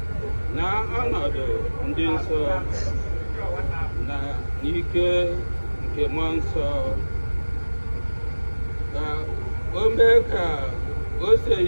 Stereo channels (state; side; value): inverted; both; correlation -1.00